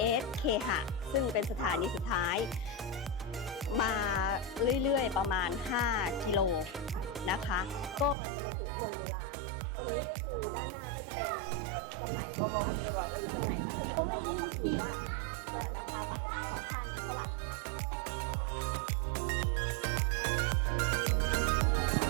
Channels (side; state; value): left; drops out; at 8.2 s